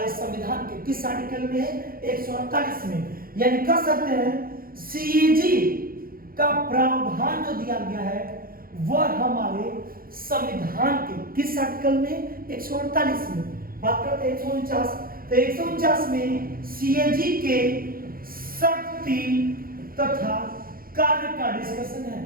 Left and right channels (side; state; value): left; late; 0.42 ms